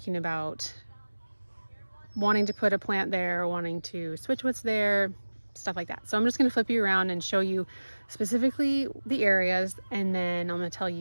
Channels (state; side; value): inverted; both; correlation -1.00